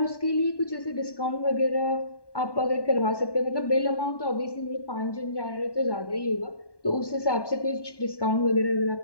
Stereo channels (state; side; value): late; right; 1.1 ms